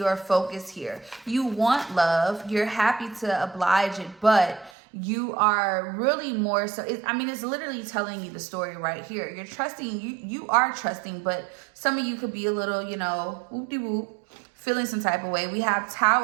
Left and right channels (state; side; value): drops out; left; at 4.7 s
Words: focus here. You want love. You're happy to oblige it, but you are really more so, it's literally telling you the story right here. You're trusting, you are trusting, but some of you could be a little, whoop-de-whoop, feeling some type of way. We have